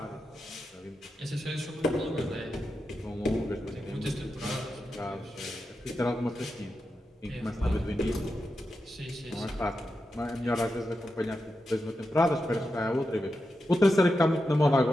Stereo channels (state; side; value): normal; both; correlation 0.89